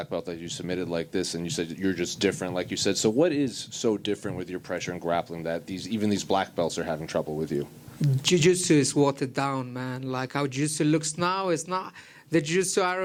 belt that you submitted like this, and you said you're just different, like you said. So what is so different with your pressure and grappling that even these black belts are having trouble with you? Jiu-jitsu is watered down, man. Like how jiu-jitsu looks now is not the jiu-jitsu I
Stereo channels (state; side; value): identical; both; correlation 1.00